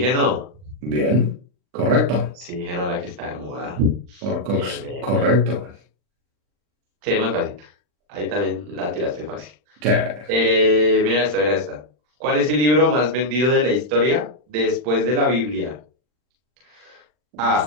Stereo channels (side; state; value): left; late; 40 ms